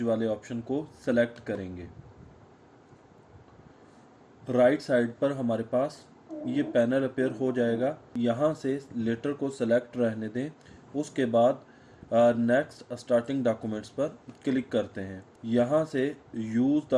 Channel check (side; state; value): both; identical; correlation 1.00